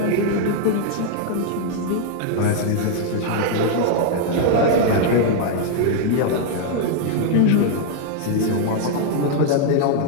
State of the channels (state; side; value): different; both; correlation 0.00